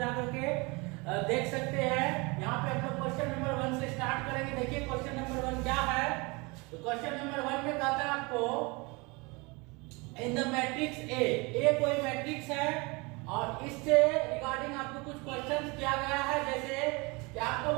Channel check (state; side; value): quieter; left; 26.9 dB